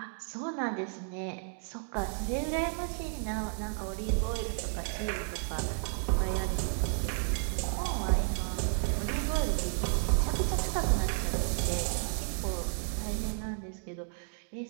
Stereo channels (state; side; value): silent; left; 56 dB below the other